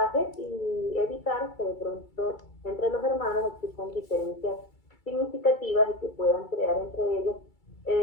y evitar que de pronto entre los hermanos existan diferencias significativas y que puedan crear entre ellos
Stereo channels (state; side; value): late; right; 2.3 ms